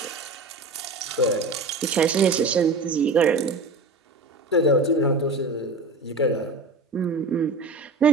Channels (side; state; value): left; quieter; 3.2 dB